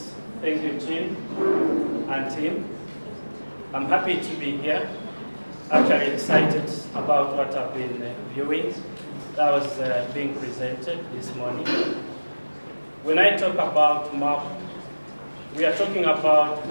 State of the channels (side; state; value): both; inverted; correlation -1.00